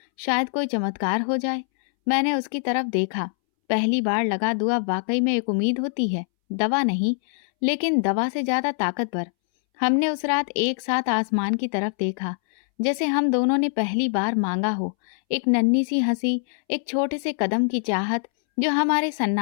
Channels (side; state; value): right; silent; 63 dB below the other